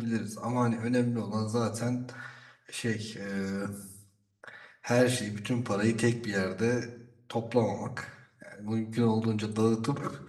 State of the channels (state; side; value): identical; both; correlation 1.00